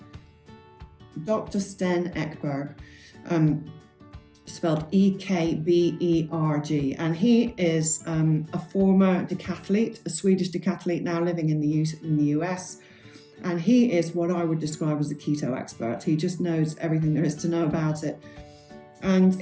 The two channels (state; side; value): identical; both; correlation 1.00